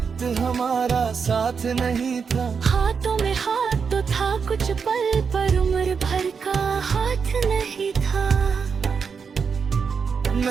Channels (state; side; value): quieter; left; 5.9 dB